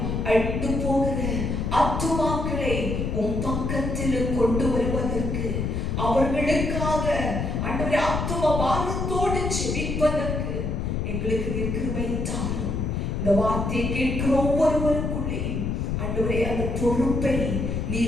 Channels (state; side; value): noise; left; rumble, 1 dB below the sound